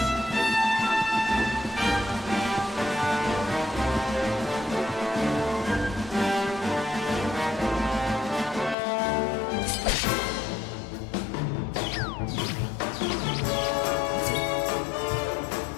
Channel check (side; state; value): right; drops out; at 8.8 s